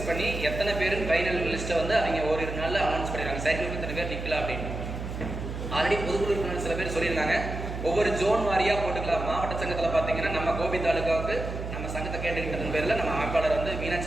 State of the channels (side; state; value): right; noise; hum, 6 dB below the sound